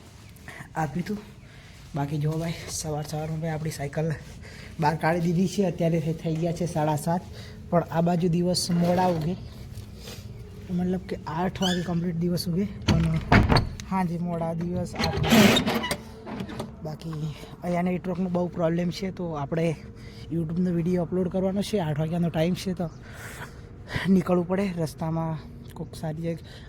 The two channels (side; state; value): both; identical; correlation 1.00